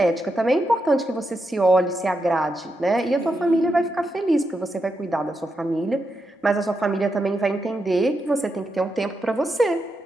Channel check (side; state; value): both; normal; correlation 0.85